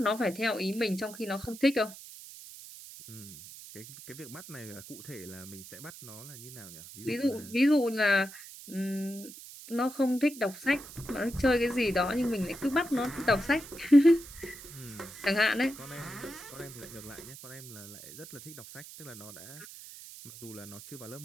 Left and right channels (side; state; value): right; noise; hiss, 15 dB below the sound